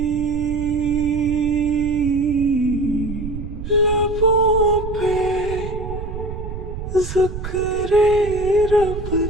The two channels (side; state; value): right; noise; rumble, 8 dB below the sound